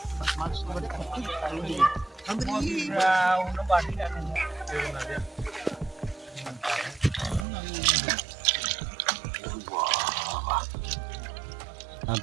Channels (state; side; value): drops out; left; at 7.5 s